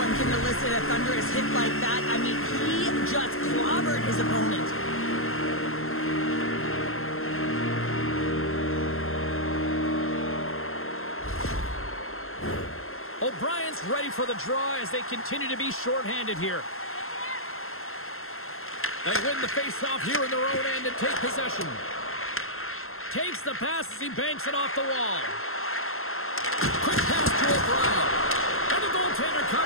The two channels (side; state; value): right; late; 0.62 ms